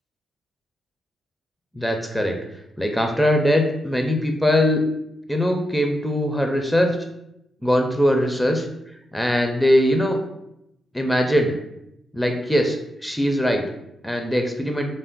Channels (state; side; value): normal; both; correlation 0.86